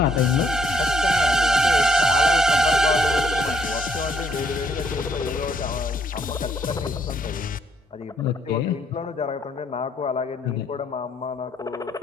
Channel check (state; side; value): normal; both; correlation 0.69